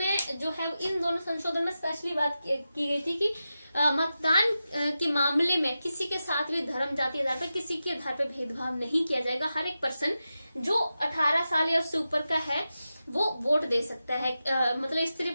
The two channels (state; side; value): inverted; both; correlation -0.91